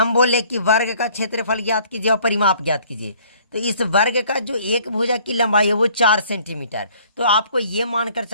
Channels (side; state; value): both; inverted; correlation -0.57